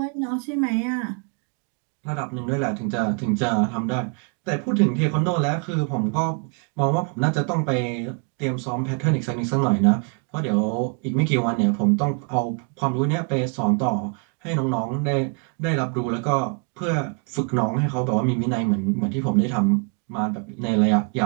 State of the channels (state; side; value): quieter; left; 38.9 dB